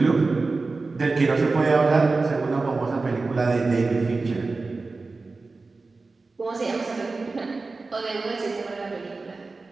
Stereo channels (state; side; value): quieter; left; 3.8 dB